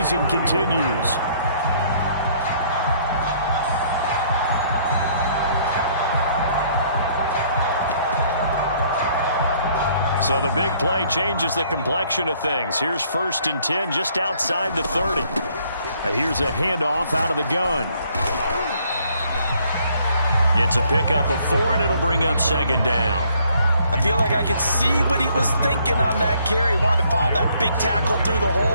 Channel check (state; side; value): inverted; both; correlation -0.64